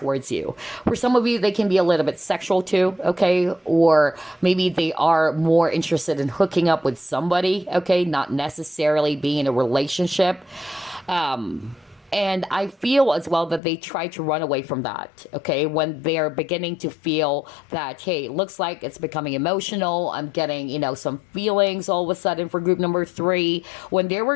you. For some of you, they can be a little bit sexual too, okay? Or maybe they are more interested in hooking up with somebody, okay? Not necessarily being in a relationship. And I feel as well that they try to run away from that, okay? When they're beginning to feel that, hey, it looks like it's becoming emotional. I'm getting, some feelings all of a sudden for group number 3, when they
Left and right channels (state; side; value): drops out; right; at 13.6 s